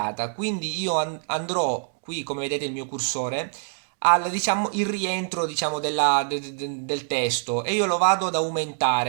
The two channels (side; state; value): left; silent; digital silence